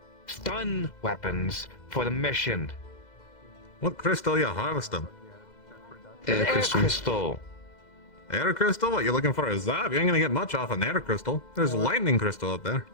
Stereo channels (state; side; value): late; right; 2.0 ms